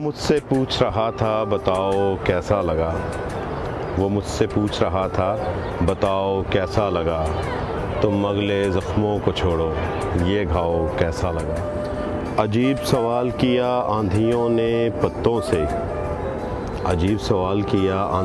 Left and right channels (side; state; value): both; identical; correlation 1.00